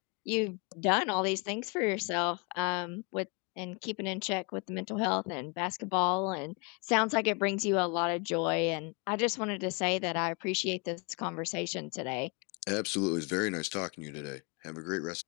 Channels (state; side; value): quieter; right; 33.2 dB